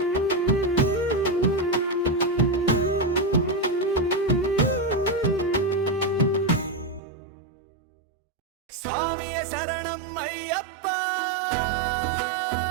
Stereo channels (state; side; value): drops out; left; at 7.0 s